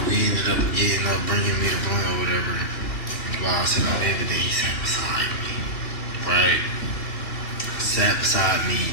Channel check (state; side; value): late; right; 2.9 ms